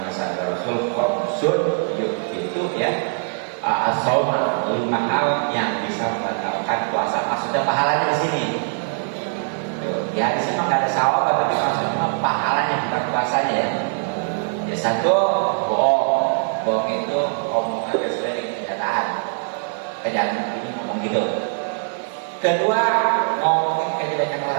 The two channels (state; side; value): silent; left; digital silence